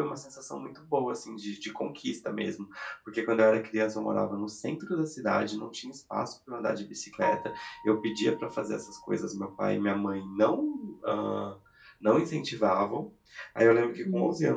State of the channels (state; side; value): identical; both; correlation 1.00